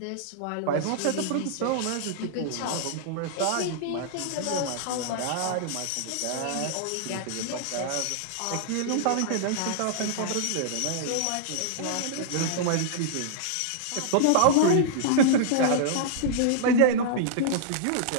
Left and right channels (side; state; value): both; different; correlation -0.01